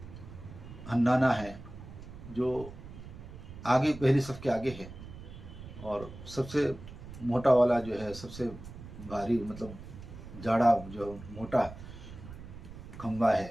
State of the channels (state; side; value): noise; right; rumble, 14 dB below the sound